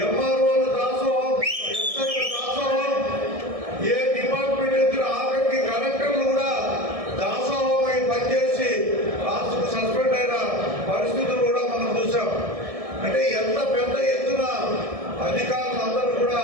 ఎంఆర్ఓల దాసోహం, ఎస్ఐల దాసోహం, ఏ డిపార్ట్మెంట్ ఎదురు ఆఖరికి కలెక్టర్లు కూడా దాసోహమై పనిచేసి రాష్ట్రం సస్పెండ్ అయిన పరిస్థితులు కూడా మనం చూసాం. అంటే ఎంత పెద్ద ఎత్తున అధికారులందరూ కూడా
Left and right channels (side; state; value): left; late; 1.6 ms